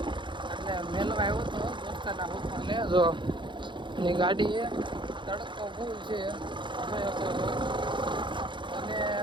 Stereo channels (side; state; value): left; late; 0.23 ms